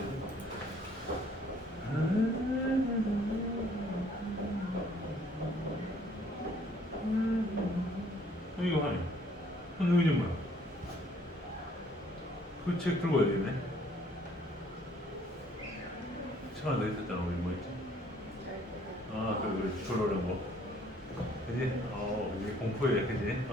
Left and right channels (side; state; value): both; normal; correlation 0.61